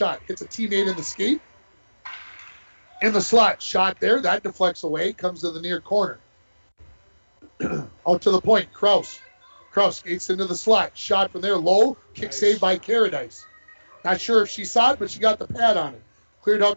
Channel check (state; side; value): inverted; both; correlation -1.00